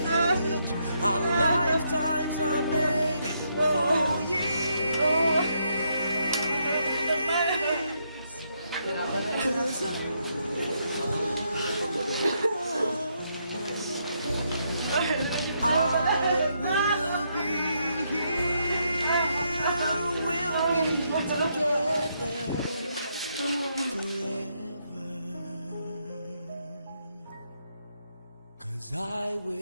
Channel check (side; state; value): both; inverted; correlation -0.77